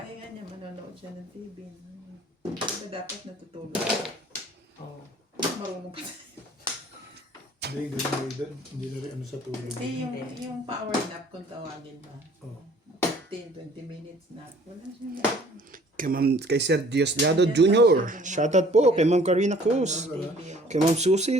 niya, manonood siya ng TV. Diba dapat natutulog? Oo. Marunong pa tayo. Hindi, ganun. Hindi na rin ano sa tulog. Kasi yung power nap kung tawagin ba? Oh. 15-20 minutes nap. Wala siya. Kay Sir Diosdado Jr. Shoutout po kay Ma'am Karina Cruz. Kay Ma'am Susie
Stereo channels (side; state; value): both; normal; correlation 0.55